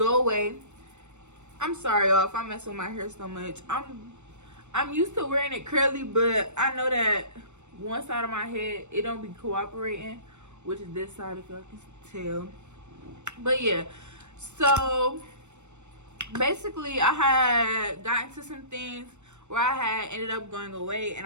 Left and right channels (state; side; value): late; left; 0.83 ms